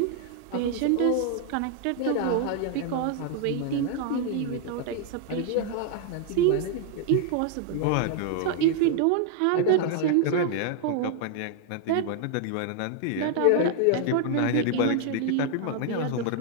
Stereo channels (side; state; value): both; different; correlation 0.00